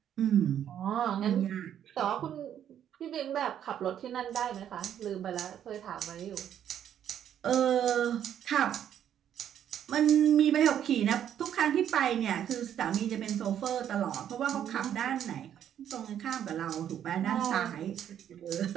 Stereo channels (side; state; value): left; quieter; 9.9 dB